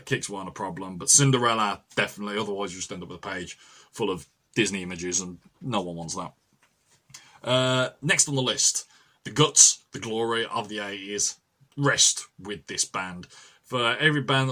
Kicks weren't a problem, but Cinderella, definitely, otherwise you just end up with a page full of Disney images, and no one wants that. Next on the list, the guts, the glory of the 80s rest with this band. For every band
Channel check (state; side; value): identical; both; correlation 1.00